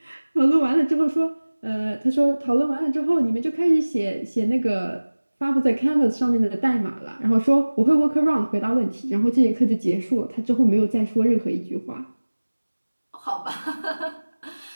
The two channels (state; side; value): inverted; both; correlation -1.00